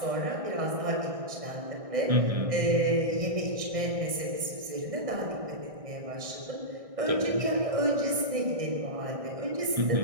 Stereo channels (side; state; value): left; late; 1.6 ms